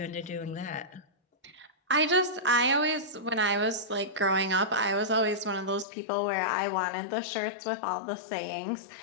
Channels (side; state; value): right; drops out; at 5.9 s